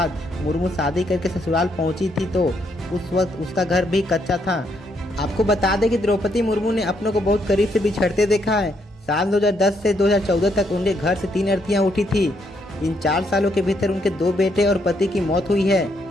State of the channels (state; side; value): normal; both; correlation 0.74